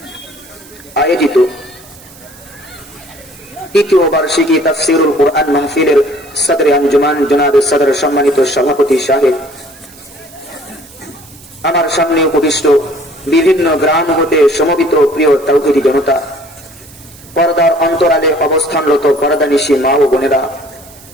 আয়োজিত তৃতীয় বার্ষিকী তাফসীরুল কোরআন মাহফিলের সদরে আঞ্জুমান জনাব সদর সম্মানিত সভাপতি সাহেব, আমার সামনে উপবিষ্ট বিভিন্ন গ্রাম হতে সমবেত প্রিয় তাওহীদি জনতা, পর্দার অন্তরালে অবস্থানরত পর্দানিশী মা ও বোনেরা,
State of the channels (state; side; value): noise; right; hiss, 22 dB below the sound